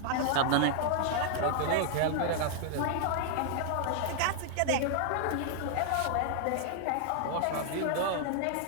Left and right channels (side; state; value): both; different; correlation 0.00